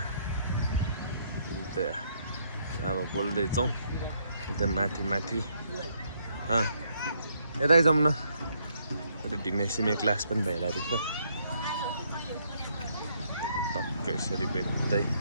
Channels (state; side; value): inverted; both; correlation -0.71